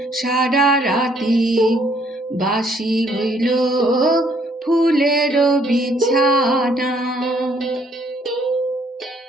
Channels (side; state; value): both; normal; correlation 0.66